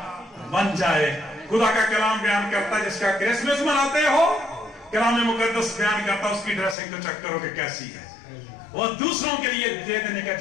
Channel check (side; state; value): right; drops out; at 6.8 s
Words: बन जाए। खुदा का कलाम बयान करता है जिसका क्रिसमस मनाते हो, कलाम मुकद्दस बयान करता है उसकी ड्रेसिंग तो चेक करो कि कैसी है, वो दूसरों के लिए दे देने का